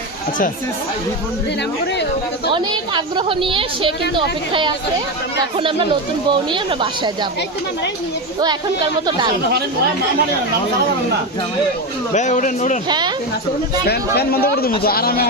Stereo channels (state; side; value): normal; both; correlation 0.15